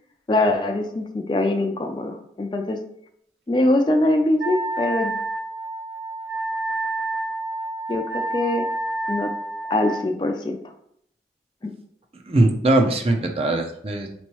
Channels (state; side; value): normal; both; correlation 0.74